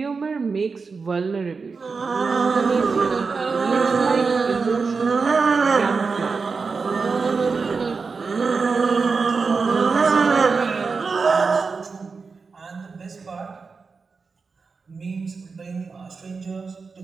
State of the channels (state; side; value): quieter; left; 4.7 dB